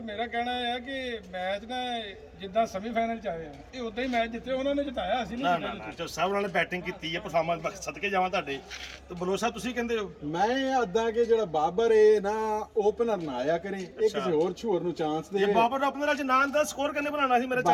ਮੇਰਾ ਕਹਿਣਾ ਹੈ ਕਿ ਮੈਚ ਨਾ ਜਿੱਦਾਂ ਸੈਮੀਫਾਈਨਲ ਚ ਆਏ ਆ ਇਹ ਉਦਾਂ ਹੀ ਮੈਚ ਜਿੱਤੇ ਉਹਨਾਂ ਨੇ ਜਿਤਾਇਆ, ਅਸੀਂ ਨਾ ਨਹੀਂ ਨਾ ਨਾ ਚੌਧਰੀ ਸਾਹਿਬ ਨਾਲ ਬੈਟਿੰਗ ਕੀਤੀ ਹੈ, ਪਰਫਾਰਮੈਂਸ ਸਦਕੇ ਜਾਵਾਂ ਤੁਹਾਡੇ। ਤੇ ਬਲੋਚ ਸਾਹਿਬ ਤੁਸੀਂ ਕਹਿੰਦੇ ਹੋ? ਮੈਂ ਅੱਦਾਂ ਕਿ ਜਿਹੜਾ ਬਾਬਰ ਏ ਨਾ ਓਪਨਰ ਨਾ ਆਇਆ ਕਰੇ, ਇਹ ਕਿਸੇ ਹੋਰ ਛੋਰ ਨੂੰ ਚਾਂਸ ਦੇ। ਜੇ ਬਾਬਰ ਆਪਣਾ ਅੱਜ ਨਾਂ ਦਾ ਸਕੋਰ ਕਿੰਨੇ ਬਣਾਉਣਾ ਸੀ ਮੇਰੇ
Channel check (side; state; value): both; identical; correlation 1.00